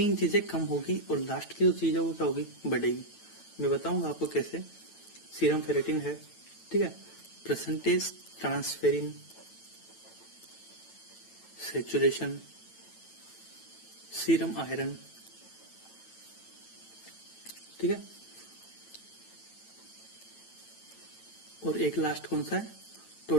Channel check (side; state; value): right; late; 9.0 ms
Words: चीजें कम होगी और लास्ट की जो चीज है वो क्या होगी, बढ़ेगी। मैं बताऊंगा आपको कैसे। सीरम फेरेटिन है, ठीक है, percentage transferrin, saturation, serum iron, ठीक है, और एक लास्ट कौन सा है,